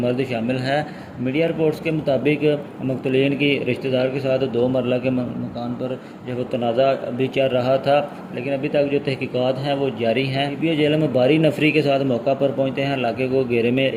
शामिल है। मीडिया रिपोर्ट्स के मुताबिक मक़तूलीन की रिश्तेदार के साथ 2 मरला के मकान पर जो वो तनाज़ा भी चल रहा था, लेकिन अभी तक जो तहकीकात हैं वो जारी हैं। DPO जेलम भारी नफरी के साथ मौका पर पहुँचते हैं, इलाके को घेरे में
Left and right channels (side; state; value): both; identical; correlation 1.00